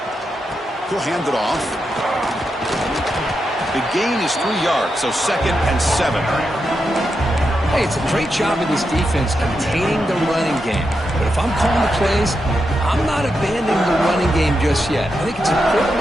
He'll hand it off. The gain is 3 yards, so 2nd and 7. Hey, it's a great job of this defense containing the running game. But if I'm calling the plays, I'm not abandoning the running game just yet. I think it's important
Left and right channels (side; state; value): both; normal; correlation 0.86